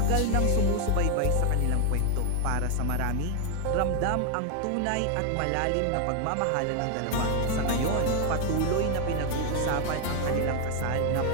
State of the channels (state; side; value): different; both; correlation 0.01